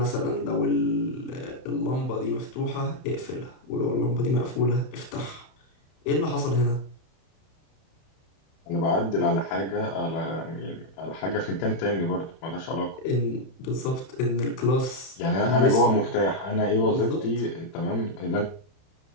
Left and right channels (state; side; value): late; right; 31 ms